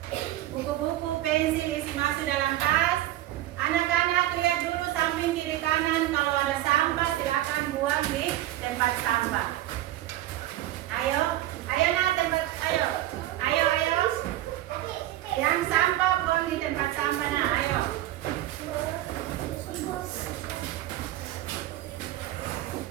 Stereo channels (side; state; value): left; quieter; 14.5 dB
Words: Buku-buku, pensil isi masuk dalam tas. Anak-anak lihat dulu samping kiri kanan, kalau ada sampah silakan buang di tempat sampah. Ayo, ayo nak tempat, ayo, ayo, ayo. Yang sampah buang di tempat sampah nak, ayo.